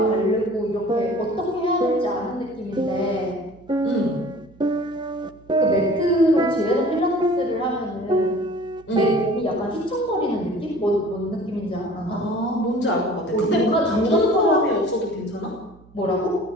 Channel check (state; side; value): noise; right; hum, 26 dB below the sound